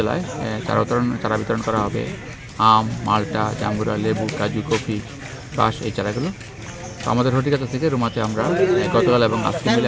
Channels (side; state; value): both; identical; correlation 1.00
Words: চারা বিতরণ করা হবে আম, মালটা, জাম্বুরা, লেবু, কাজু, কফি, বাঁশ এই চারাগুলো। তো আমাদের হর্টিকালচার থেকে রুমাতে আমরা গতকাল এবং আজকে মিলে